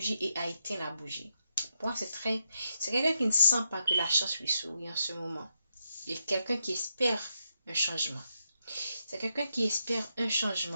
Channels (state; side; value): inverted; both; correlation -0.82